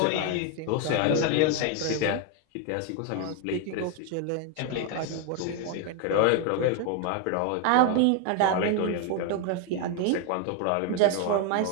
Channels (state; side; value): different; both; correlation 0.01